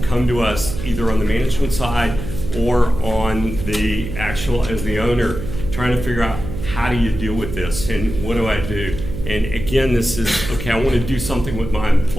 come to us either on the management side or on the actual as the owner, trying to figure out how do you deal with this and what do I do? And again, this is, okay, I want to do something with my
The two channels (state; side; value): noise; right; hum, 8 dB below the sound